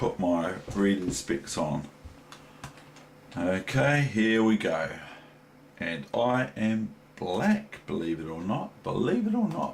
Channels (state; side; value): identical; both; correlation 1.00